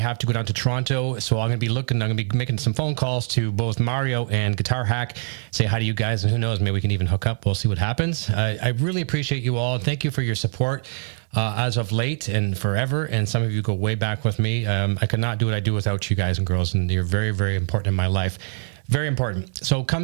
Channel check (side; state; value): left; silent; digital silence